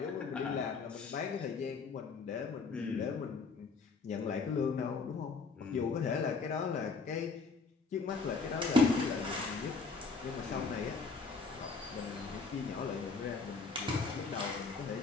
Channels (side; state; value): right; quieter; 4.5 dB